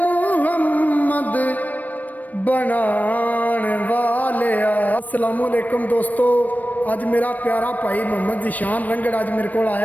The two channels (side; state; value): right; late; 0.079 ms